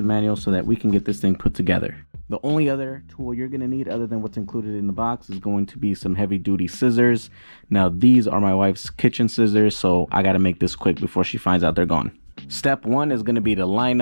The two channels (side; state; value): both; inverted; correlation -1.00